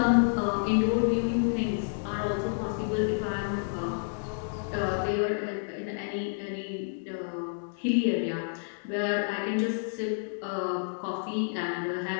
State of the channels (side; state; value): right; silent; digital silence